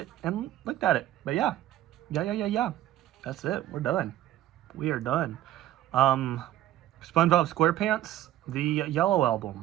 and looked at it. But yeah. That's it. We're done. We are done. SpongeBob SquarePants, the Yellow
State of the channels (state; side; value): quieter; left; 13.3 dB